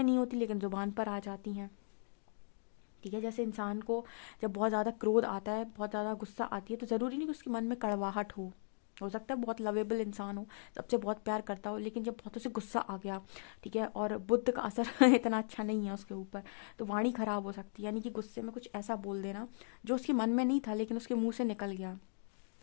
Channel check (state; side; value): silent; right; digital silence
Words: नहीं होती लेकिन जुबान पर आ जाती हैं, ठीक है। जैसे इंसान को जब बहुत ज़्यादा क्रोध आता है, बहुत ज़्यादा गुस्सा आती है, तो ज़रूरी नहीं कि उसके मन में कड़वाहट हो सकता है बहुत लवेबल इंसान हो, सबसे बहुत प्यार करता हो, लेकिन जब बहुत उसे गुस्सा आ गया, ठीक है, और बुद्ध का असर इतना अच्छा नहीं है उसके ऊपर, तो वाणी खराब हो सकती है। यानी कि गुस्से में कुछ ऐसा बोल देना जो उसके मन में नहीं था लेकिन उसके मुंह से निकल गया।